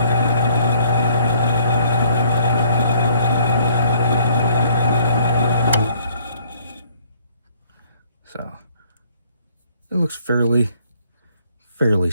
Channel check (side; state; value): both; inverted; correlation -0.62